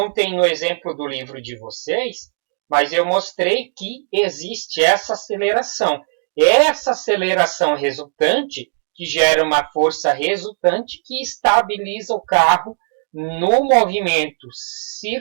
tem no exemplo do livro de vocês, mas eu mostrei que existe essa aceleração. Essa aceleração resultante que gera uma força resultante que estabiliza o carro no movimento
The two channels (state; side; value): silent; left; digital silence